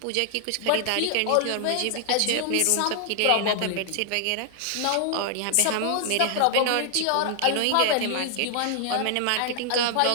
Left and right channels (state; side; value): different; both; correlation 0.00